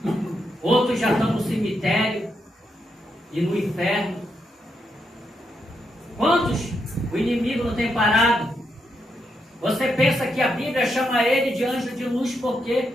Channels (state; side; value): normal; both; correlation 0.82